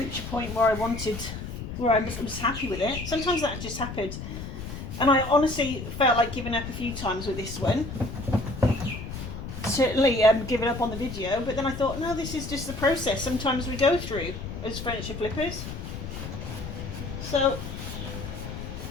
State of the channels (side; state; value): left; noise; rumble, 8 dB below the sound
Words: a point where I wanted, where I was happy with it. Sometimes that just happened. And I honestly felt like giving up a few times with this one. Certainly giving up on the video, but then I thought, no, this is just the process sometimes we go through as furniture flippers. So